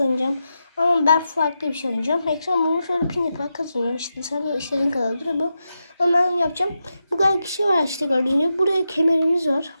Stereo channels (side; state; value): both; inverted; correlation -0.88